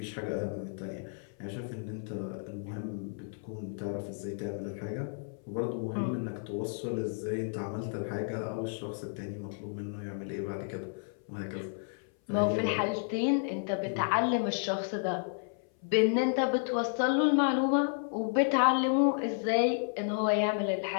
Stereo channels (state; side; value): silent; right; 56 dB below the other